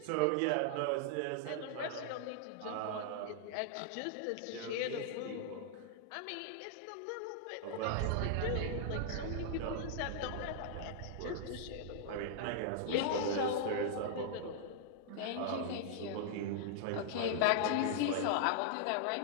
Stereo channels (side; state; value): both; different; correlation -0.01